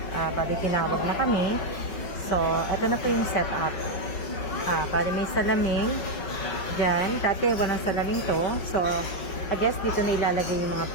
Bali tinawag na kami. So, ito na po yung setup. Bali may salamin. Diyan. Dati walang salamin to. So, I guess dito na ilalagay yung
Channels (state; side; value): late; right; 5.3 ms